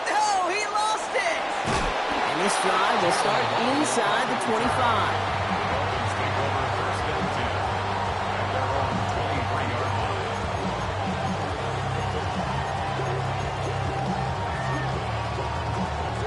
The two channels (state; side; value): identical; both; correlation 1.00